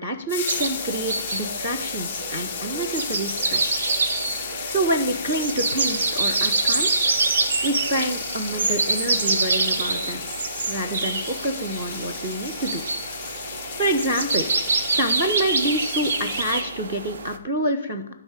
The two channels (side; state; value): both; inverted; correlation -0.56